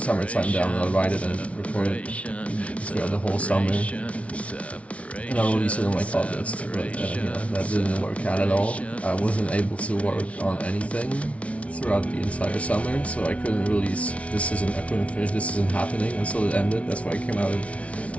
Down, and I'll write it and record it throughout the whole summer. And I'll release it in August, but that didn't work out at all. I wasn't able to work on anything throughout the entire summer, so I couldn't finish This Isn't Happening until it ended. That's why it came out in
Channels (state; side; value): late; right; 0.064 ms